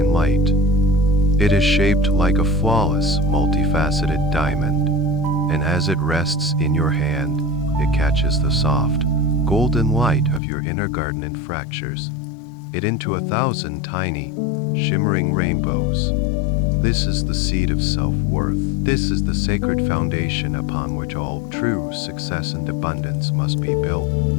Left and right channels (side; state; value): right; drops out; at 10.4 s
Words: light. It is shaped like a flawless, multifaceted diamond, and as it rests in your hand, it catches the soft, golden light of your inner garden and fractures it into 1,000 tiny, shimmering rainbows. This is the seed of self-worth. This is the sacred foundation upon which all true success and abundance must be built.